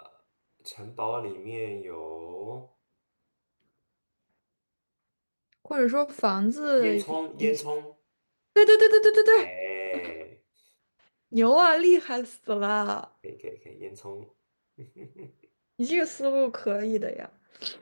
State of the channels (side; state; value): both; inverted; correlation -1.00